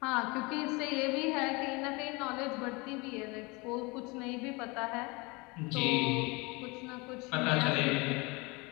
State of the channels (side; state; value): right; quieter; 26.5 dB